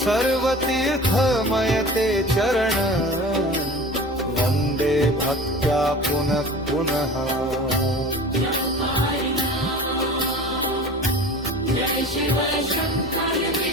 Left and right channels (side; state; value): both; normal; correlation 0.39